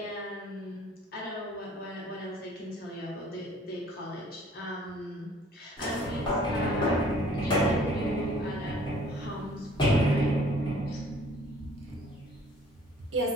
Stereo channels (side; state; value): both; normal; correlation 0.55